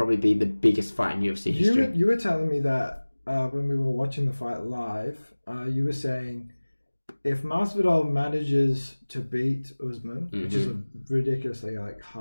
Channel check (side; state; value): both; inverted; correlation -1.00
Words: be the biggest fight in UFC history. You were telling me that when we were watching the fight live, you were saying if Masvidal manages to beat Usman, which is a ridiculously like